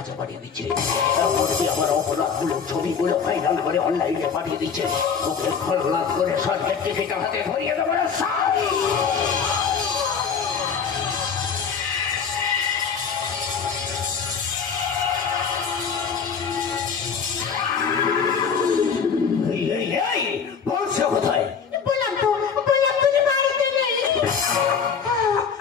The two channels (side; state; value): right; quieter; 6.4 dB